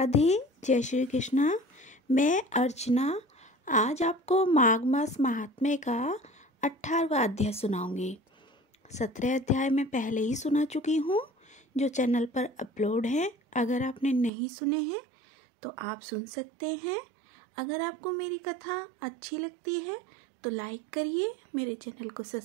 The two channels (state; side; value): drops out; left; at 14.3 s